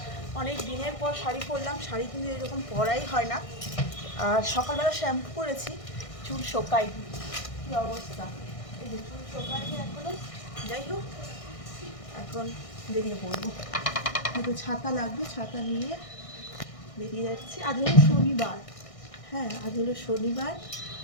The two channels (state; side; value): late; right; 1.6 ms